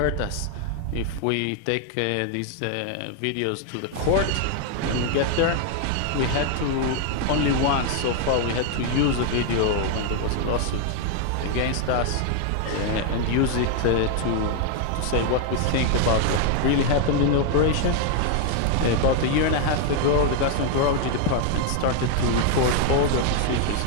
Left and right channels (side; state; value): both; different; correlation 0.00